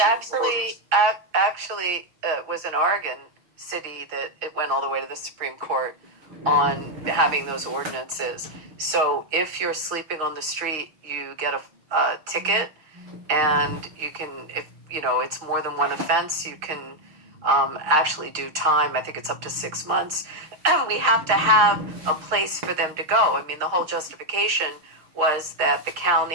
Actually, was in Oregon City that it went all the way to the Supreme Court on having those ordinances. So if you're sleeping on the street, you get a ticket, and you can, if you know it's more than one offense, you can actually do time. I think it's up to 6 months. We have to have a place for them to go. I mean, the whole justification was that the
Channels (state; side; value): late; left; 6.5 ms